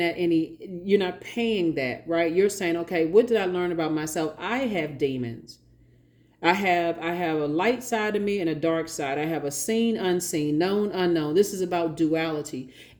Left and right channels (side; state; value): both; identical; correlation 1.00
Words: you're not paying that, right? You're saying, okay, what did I learn about myself? I have demons. I have a light side of me and a dark side. I have a seen, unseen, known, unknown. This is about duality.